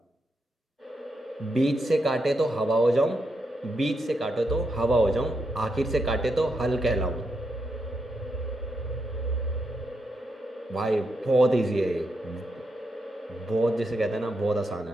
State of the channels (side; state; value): both; normal; correlation 0.82